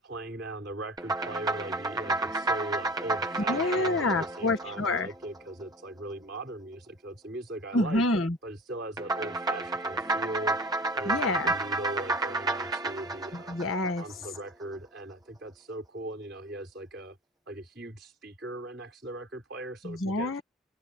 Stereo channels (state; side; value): normal; both; correlation 0.37